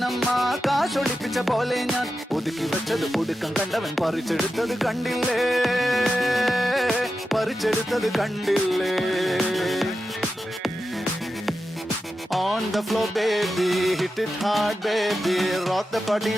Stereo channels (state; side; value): normal; both; correlation 0.91